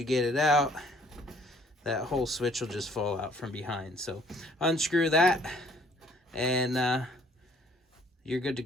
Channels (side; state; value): both; normal; correlation 0.60